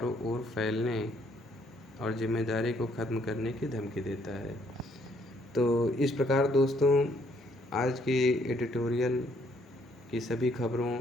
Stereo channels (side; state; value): both; normal; correlation 0.68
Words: ओर फैलने और जिम्मेदारी को ख़त्म करने की धमकी देता है। तो इस प्रकार दोस्तों, आज की एडिटोरियल की सभी खबरों